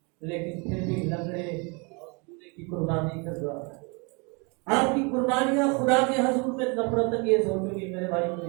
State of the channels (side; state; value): left; quieter; 31.8 dB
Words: لیکن پھر بھی لنگڑے کی قربانی کر رہا ہے۔ آپ کی قربانیاں خدا کے حضور میں نفرت انگیز ہو چکی میرے بھائی